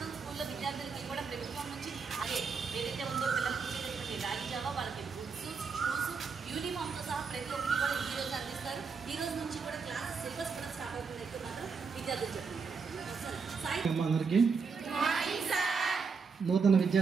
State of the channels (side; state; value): left; quieter; 5.3 dB